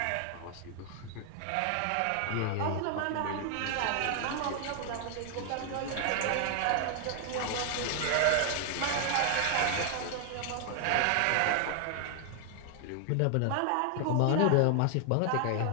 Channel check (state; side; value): different; both; correlation 0.00